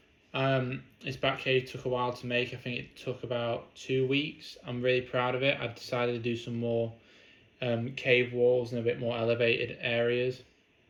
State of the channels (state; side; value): identical; both; correlation 1.00